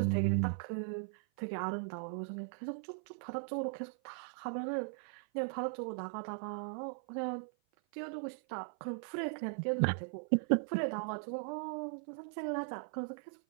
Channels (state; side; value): silent; left; 52 dB below the other